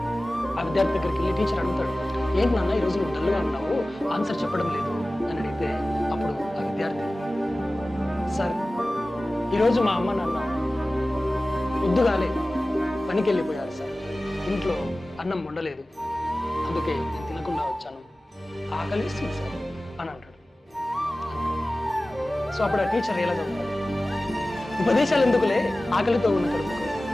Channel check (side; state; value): both; normal; correlation 0.97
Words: ఆ విద్యార్థి దగ్గరికి వెళ్ళి టీచర్ అడుగుతాడు, ఏంటి నాన్న ఈరోజు నువ్వు డల్గా ఉన్నావు, ఆన్సర్ చెప్పడం లేదు అని అడిగితే అప్పుడు ఆ విద్యార్థి, సార్ ఈరోజు మా అమ్మ నాన్న పొద్దుగాలే పనికి వెళ్ళిపోయారు సార్, ఇంట్లో అన్నం వండలేదు, అందుకే నేను తినకుండా వచ్చాను, ఆకలిస్తుంది సార్ అని అంటాడు. సో అప్పుడు ఆ టీచర్ ఎలా చెప్తాడు, ఉపదేశాలు ఎందుకులే, ఆకలితో ఉన్న కడుపుకు